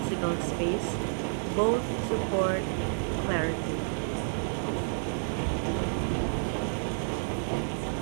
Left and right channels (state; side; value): silent; left; 58 dB below the other